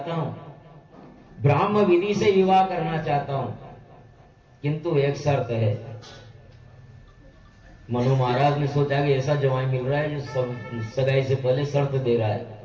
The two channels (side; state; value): both; identical; correlation 1.00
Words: हूं, ब्राह्म विधि से विवाह करना चाहता हूं, किंतु एक शर्त है। मनु महाराज ने सोचा कि ऐसा जवाई मिल रहा है जो सगाई से पहले शर्त दे रहा है।